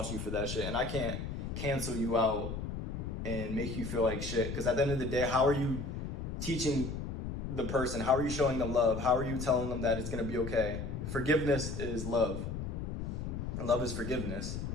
you for that shit, and I can't cancel you out and make you feel like shit, because at the end of the day, how are you teaching the person? How are you showing them love? How are you telling them that it's gonna be okay? Forgiveness is love, and love is forgiveness.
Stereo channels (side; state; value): left; noise; rumble, 5 dB below the sound